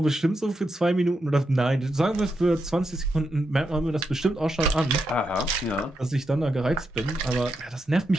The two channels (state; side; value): normal; both; correlation 0.84